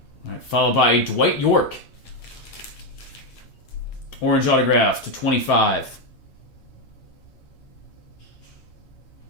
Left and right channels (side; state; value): right; late; 8.6 ms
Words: All right, followed by Dwight York. Orange autograph to 25.